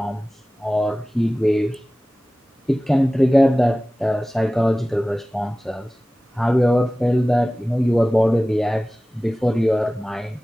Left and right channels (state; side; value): normal; both; correlation 0.97